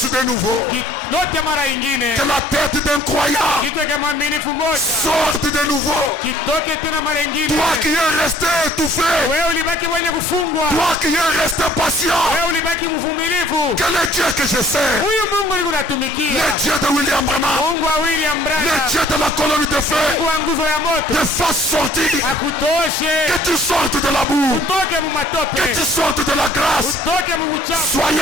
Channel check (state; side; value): normal; both; correlation 0.56